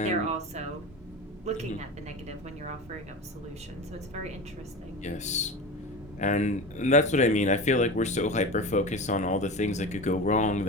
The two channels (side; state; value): both; normal; correlation 0.28